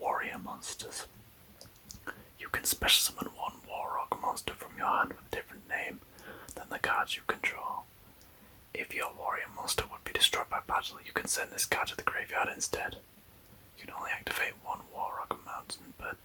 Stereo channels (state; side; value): identical; both; correlation 1.00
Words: warrior monsters, you can special summon one Warrock monster from your hand with a different name than the cards you control. If your warrior monster would be destroyed by battle, you can send this card to the graveyard instead. You can only activate one Warrock Mountain per